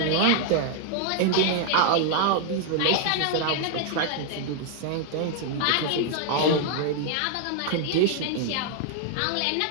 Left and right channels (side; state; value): both; different; correlation 0.00